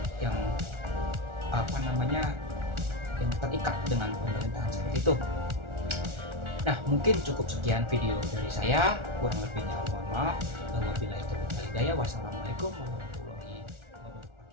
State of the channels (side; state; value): left; late; 1.4 ms